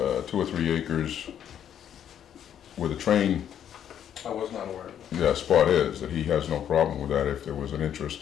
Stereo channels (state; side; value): quieter; right; 9.6 dB